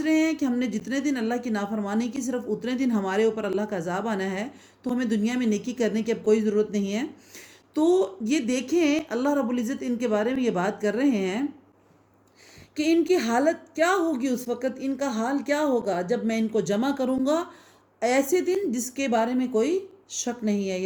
رہے ہیں کہ ہم نے جتنے دن اللہ کی نافرمانی کی صرف اتنے دن ہمارے اوپر اللہ کا عذاب آنا ہے، تو ہمیں دنیا میں نیکی کرنے کی اب کوئی ضرورت نہیں ہے۔ تو یہ دیکھیں اللہ رب العزت ان کے بارے میں یہ بات کر رہے ہیں کہ ان کی حالت کیا ہوگی، اس وقت ان کا حال کیا ہوگا جب میں ان کو جمع کروں گا ایسے دن جس کے بارے میں کوئی شک نہیں ہے،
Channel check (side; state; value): both; identical; correlation 1.00